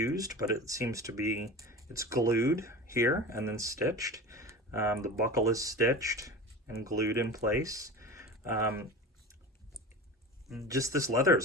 but it seems to be, it's glued here and then stitched. The buckle is stitched and glued in place. Just this leather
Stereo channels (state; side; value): normal; both; correlation 0.32